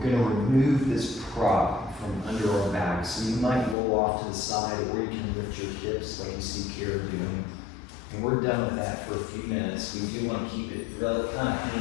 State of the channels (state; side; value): drops out; right; at 3.8 s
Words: going to remove this prop from under our back, so you might roll off to the side, or you can lift your hips like you see Kara doing. And we're done with that for a few minutes. We do want to keep it kind of